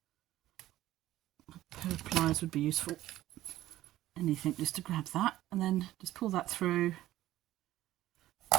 A pair of pliers would be useful. Anything just to grab that, and then just pull that through.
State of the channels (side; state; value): left; quieter; 14.6 dB